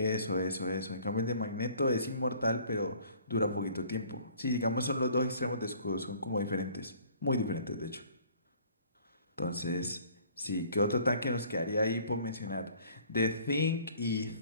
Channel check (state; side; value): inverted; both; correlation -0.55